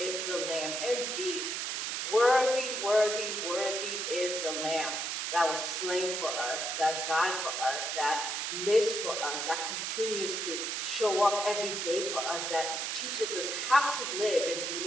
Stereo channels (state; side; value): noise; right; hiss, 2 dB below the sound